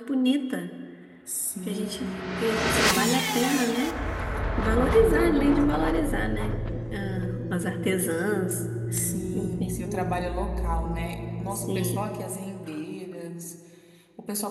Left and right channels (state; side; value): identical; both; correlation 1.00